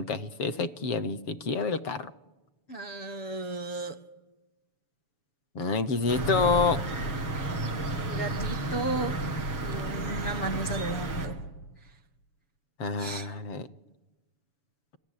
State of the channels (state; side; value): late; right; 7.1 ms